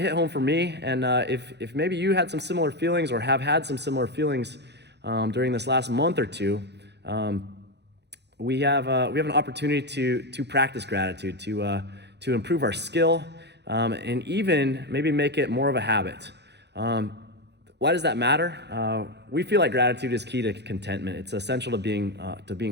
hit home for me. And if maybe you had some similar feelings or have had some similar feelings during this last month or two, we have an opportunity to practice gratitude, to improve our skill, and even maybe make it more of a habit. Why does that matter? We feel like gratitude is key to contentment. It's essential to being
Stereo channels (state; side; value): late; left; 0.50 ms